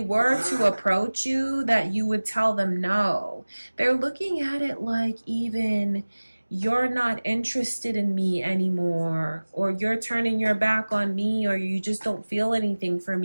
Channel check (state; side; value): inverted; both; correlation -1.00